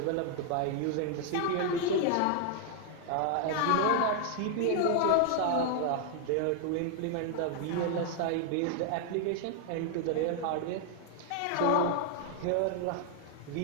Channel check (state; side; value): different; both; correlation 0.00